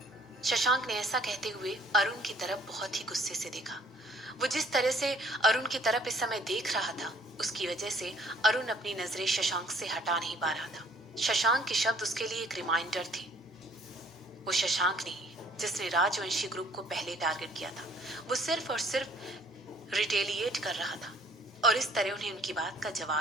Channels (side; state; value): both; normal; correlation 0.59